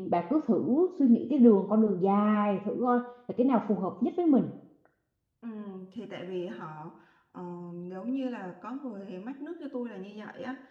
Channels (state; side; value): identical; both; correlation 1.00